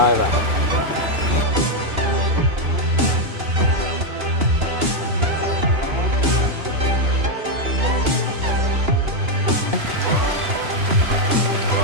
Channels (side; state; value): left; late; 2.8 ms